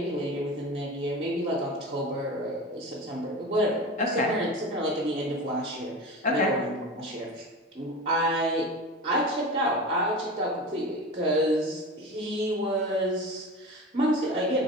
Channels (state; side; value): normal; both; correlation 0.30